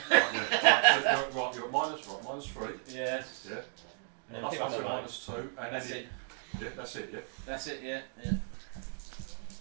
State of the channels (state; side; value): silent; left; 55 dB below the other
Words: Right, you're at -3. Yes. Yeah. And then Plus pick up the one, knife. -2. And That's then it. Yeah, that's it. Yeah. That's it. Yeah. Yeah.